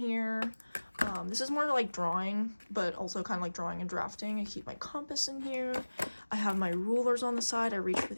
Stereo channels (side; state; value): both; inverted; correlation -1.00